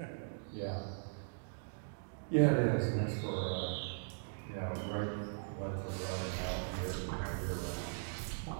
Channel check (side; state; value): left; silent; digital silence